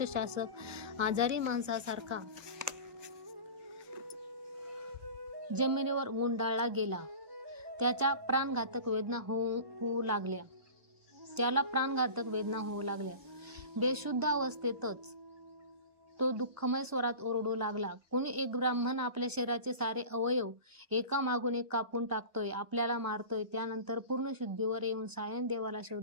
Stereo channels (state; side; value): late; left; 1.0 ms